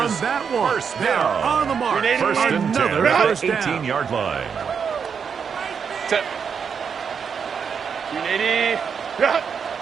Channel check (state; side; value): quieter; left; 6.6 dB